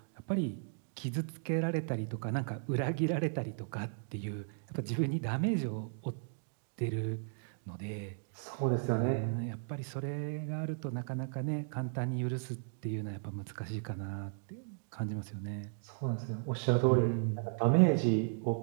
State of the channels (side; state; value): left; silent; digital silence